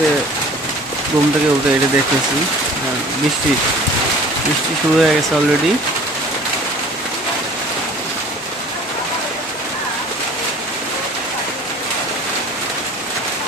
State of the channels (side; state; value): both; normal; correlation 0.46